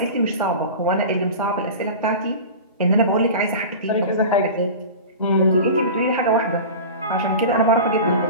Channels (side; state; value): both; inverted; correlation -0.33